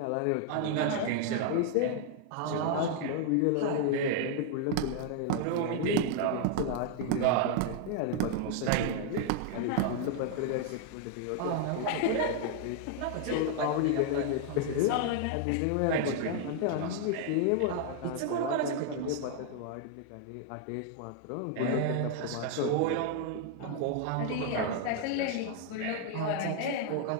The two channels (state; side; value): different; both; correlation 0.00